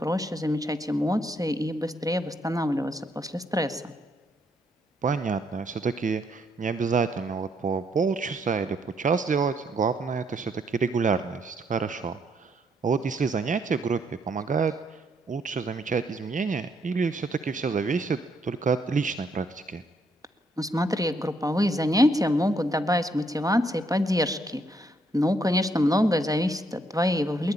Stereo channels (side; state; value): both; normal; correlation 0.72